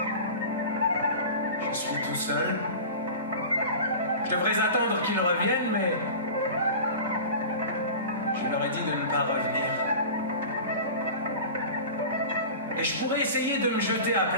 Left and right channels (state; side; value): inverted; both; correlation -0.34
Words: Je suis tout seul. Je devrais attendre qu'ils reviennent, mais je Je leur ai dit de ne pas revenir. Et je pourrais essayer de me jeter à